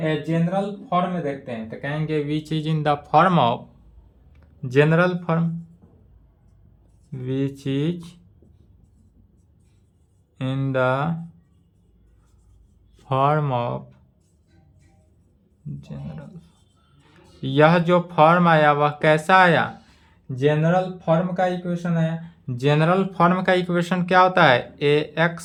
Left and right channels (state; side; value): identical; both; correlation 1.00